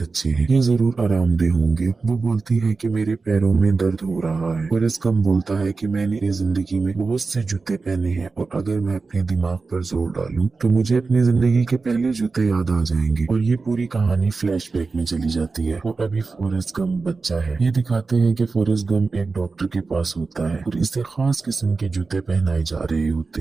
अच्छे हैं, ये जरूर आरामदेह होंगे। वो बोलती है कि मेरे पैरों में दर्द हो रहा है। फॉरेस्ट गम बोलता है कि मैंने अपनी जिंदगी में बहुत से जूते पहने हैं और अगर मैं अपने दिमाग पर जोर डालूं तो मुझे अपनी जिंदगी के पहले जूते याद आ जाएंगे। और ये पूरी कहानी फ्लैशबैक में चली जाती है और अभी फॉरेस्ट गम बच्चा है। ये दिखाते हैं कि फॉरेस्ट गम एक डॉक्टर के पास होता है और इसे खास किस्म के जूते पहनाए जा रहे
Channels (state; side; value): quieter; left; 4.2 dB